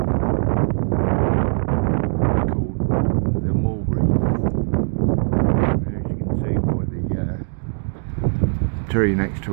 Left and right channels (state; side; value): silent; left; digital silence